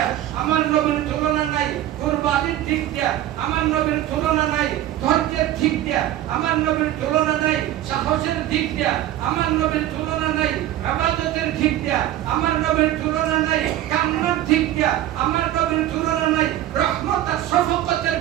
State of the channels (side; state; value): left; quieter; 13.2 dB